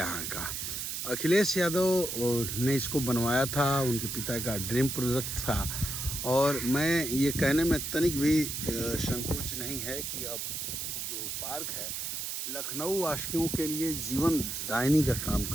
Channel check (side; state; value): right; noise; hiss, 4 dB below the sound